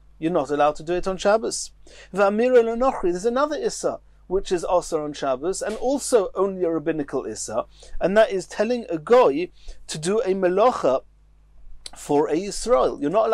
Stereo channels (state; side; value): identical; both; correlation 1.00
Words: You're not allowed to do it on Shabbos. There's another Issa, which is also on Shabbos, and also only a rabbinical Issa, and that is telling a goy to do a melacha for a Yisrael. You're not